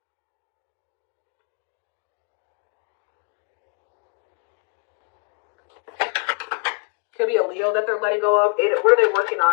Could be a Leo that they're letting go of. What are they working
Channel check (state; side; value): quieter; right; 38.3 dB